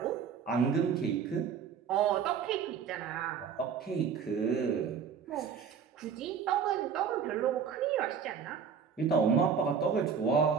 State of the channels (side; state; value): left; quieter; 6.9 dB